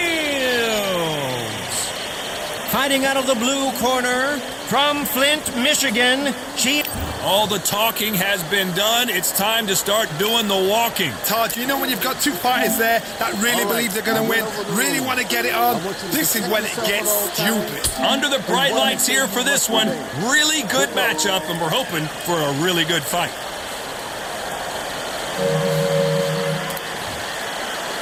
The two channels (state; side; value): identical; both; correlation 1.00